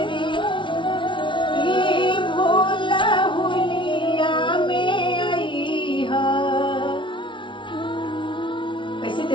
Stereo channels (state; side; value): late; right; 0.24 ms